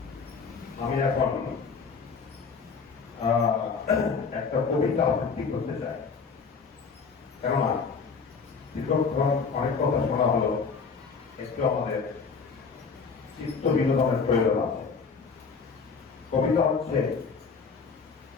আমি এখন একটা কবিতা আবৃত্তি করতে চাই, কেননা দীর্ঘক্ষণ অনেক কথা শোনা হলো, একটু আমাদের চিত্ত বিনোদনের প্রয়োজন আছে। কবিতা হচ্ছে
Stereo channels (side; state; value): right; quieter; 5.2 dB